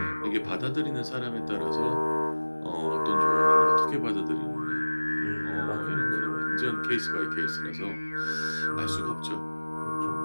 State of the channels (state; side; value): inverted; both; correlation -1.00